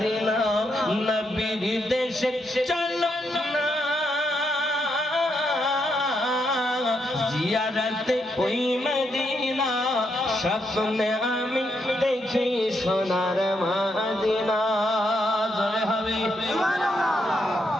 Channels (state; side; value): normal; both; correlation 0.79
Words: নবীর দেশে চলো না জিয়ারতে ওই মদিনা স্বপ্নে আমি দেখি সোনার মদিনা জয় হবে